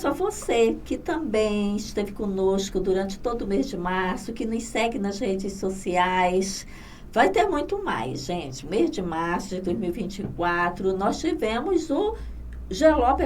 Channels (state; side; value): identical; both; correlation 1.00